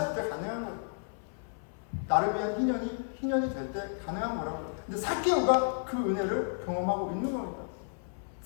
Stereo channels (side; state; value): right; silent; 56 dB below the other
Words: 때 가능한 거예요. 나를 위한 희년이 될 때 가능한 거라고. 근데 삭개오가 그 은혜를 경험하고 있는 겁니다.